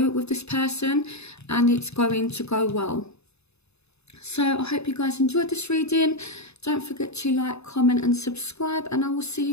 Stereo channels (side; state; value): right; late; 0.80 ms